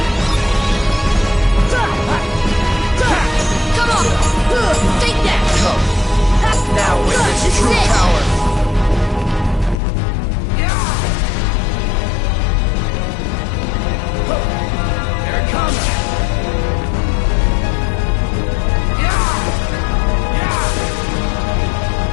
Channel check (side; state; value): right; drops out; at 9.8 s